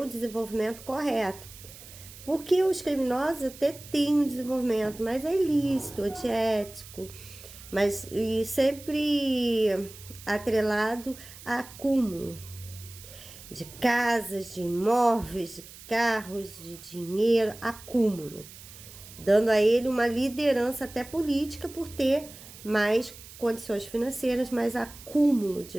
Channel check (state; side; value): noise; right; hiss, 17 dB below the sound